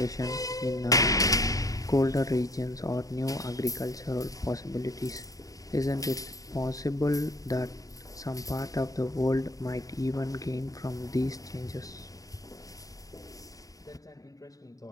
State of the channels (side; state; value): right; late; 0.17 ms